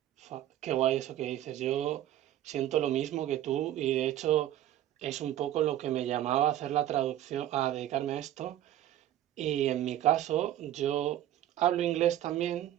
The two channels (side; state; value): left; quieter; 12.6 dB